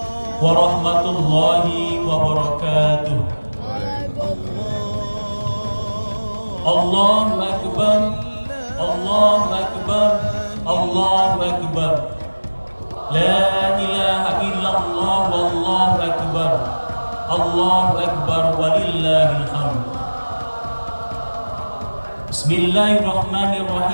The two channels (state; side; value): inverted; both; correlation -1.00